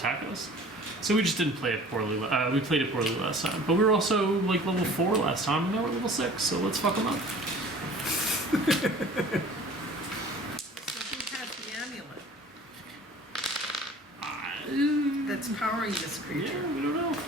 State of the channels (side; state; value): both; normal; correlation 0.47